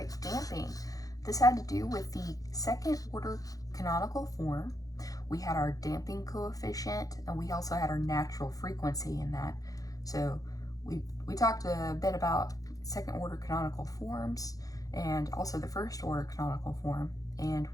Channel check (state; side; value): late; right; 0.17 ms